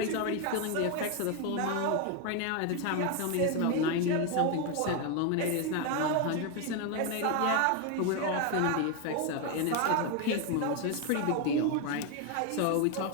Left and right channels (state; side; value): different; both; correlation 0.02